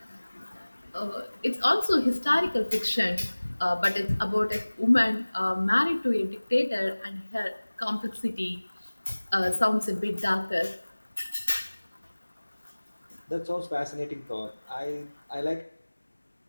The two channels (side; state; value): both; inverted; correlation -1.00